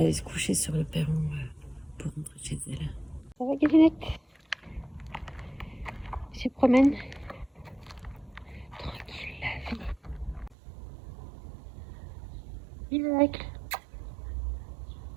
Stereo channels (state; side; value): drops out; left; at 10.6 s